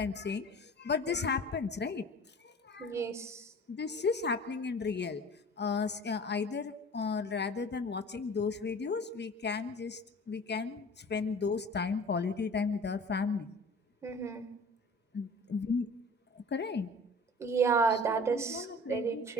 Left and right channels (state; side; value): normal; both; correlation 0.42